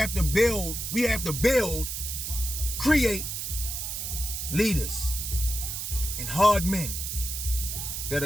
to build. We have to build, create leaders and hard men that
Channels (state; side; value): noise; right; hiss, 4 dB below the sound